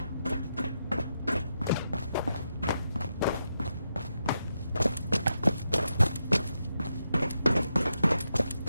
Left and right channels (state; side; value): inverted; both; correlation -0.85